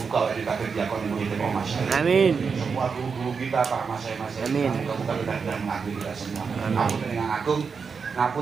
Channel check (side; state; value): left; quieter; 5.6 dB